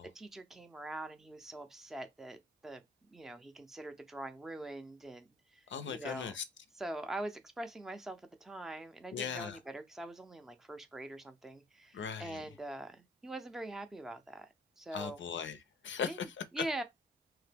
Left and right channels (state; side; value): normal; both; correlation 0.57